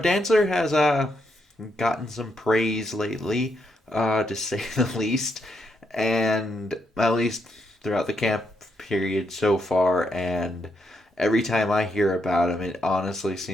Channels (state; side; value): normal; both; correlation 0.79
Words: has gotten some praise lately, to say the least, and at least throughout the camp period so far. And every time I hear about him, it honestly